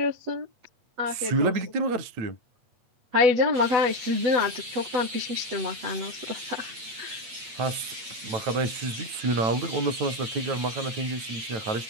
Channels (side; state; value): left; late; 8.5 ms